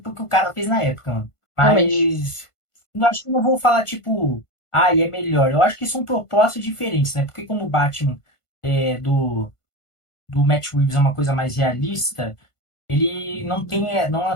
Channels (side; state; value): right; late; 1.5 ms